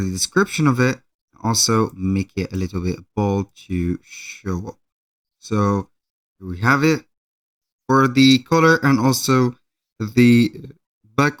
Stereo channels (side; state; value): both; identical; correlation 1.00